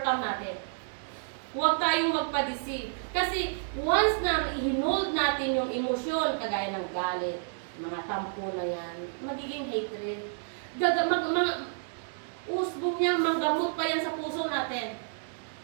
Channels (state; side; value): silent; left; digital silence